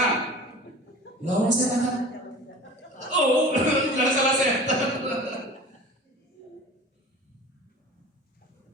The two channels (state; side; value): normal; both; correlation 0.40